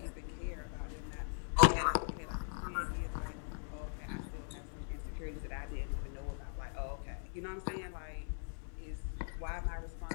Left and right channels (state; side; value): silent; right; digital silence